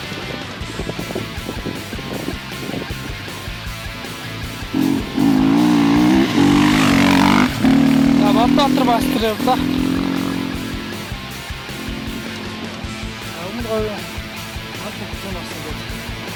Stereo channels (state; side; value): identical; both; correlation 1.00